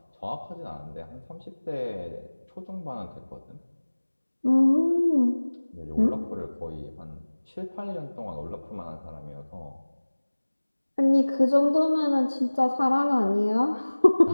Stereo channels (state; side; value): inverted; both; correlation -1.00